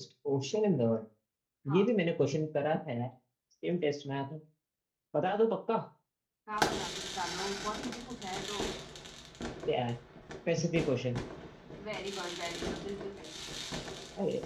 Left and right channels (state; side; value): identical; both; correlation 1.00